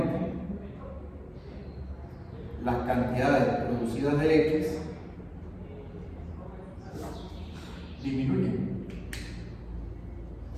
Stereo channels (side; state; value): both; identical; correlation 1.00